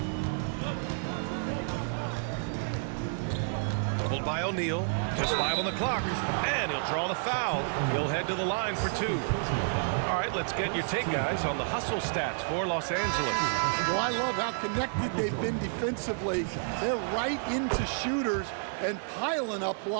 Doubled by O'Neal. Just 5 on the clock. And he'll draw the foul. He'll head to the line for 2. All right, let's get your take, guys, on the hustle stats for Los Angeles. Well, I love how connected they've been defensively. They're right into shooters and piling up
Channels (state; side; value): silent; left; 58 dB below the other